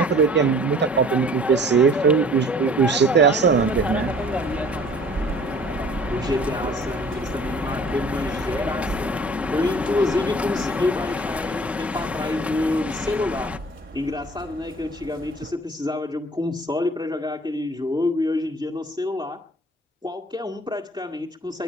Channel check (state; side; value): normal; both; correlation 0.49